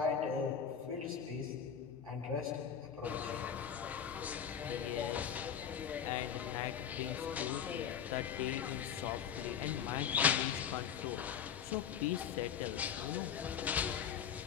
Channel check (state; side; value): quieter; right; 8.1 dB